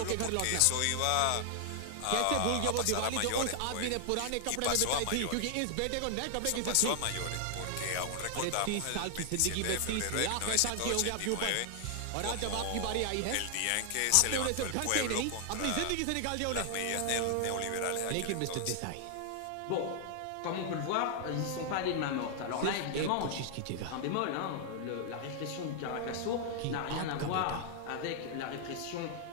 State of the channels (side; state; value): both; different; correlation 0.00